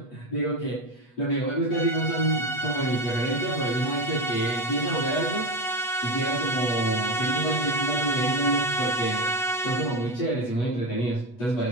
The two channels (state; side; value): late; right; 8.2 ms